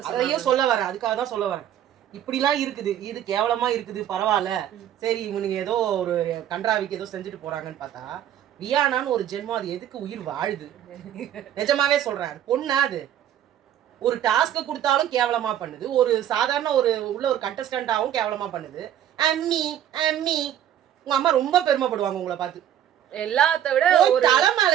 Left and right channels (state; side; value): quieter; left; 10.8 dB